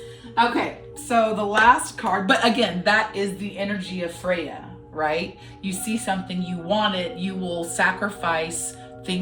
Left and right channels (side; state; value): both; identical; correlation 1.00